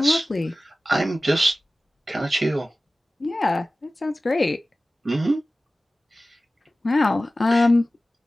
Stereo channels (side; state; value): both; normal; correlation 0.96